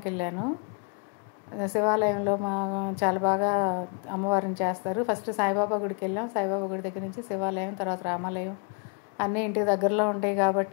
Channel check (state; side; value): quieter; right; 37.3 dB